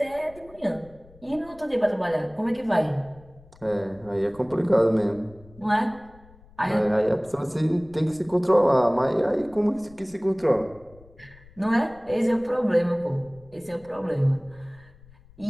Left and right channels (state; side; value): noise; left; rumble, 25 dB below the sound